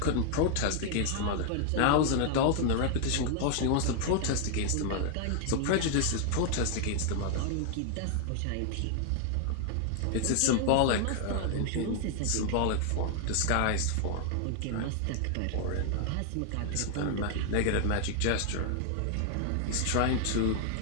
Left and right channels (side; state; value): both; different; correlation 0.00